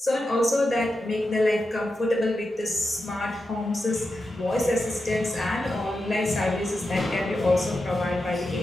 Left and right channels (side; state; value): both; normal; correlation 0.89